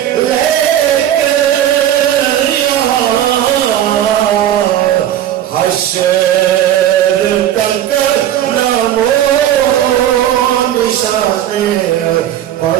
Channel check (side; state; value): left; quieter; 11.5 dB